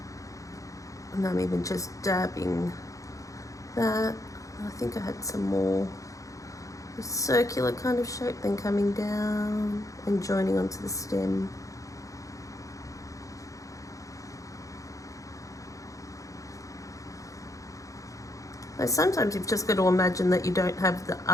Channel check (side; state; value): right; late; 0.16 ms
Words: And I'm even just dabbing that. I think I had some more circular kind of shape, then coming down and joining onto the stem. Now, sometimes you've just got to imagine that you don't have the